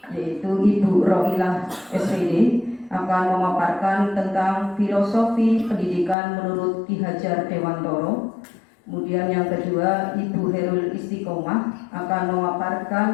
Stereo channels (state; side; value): drops out; right; at 6.2 s